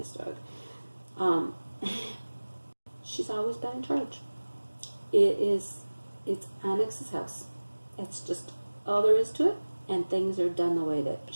dog. She's always been in charge. It's Onyx's house. That's just all there is to it, and things are done the way that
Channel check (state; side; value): inverted; both; correlation -1.00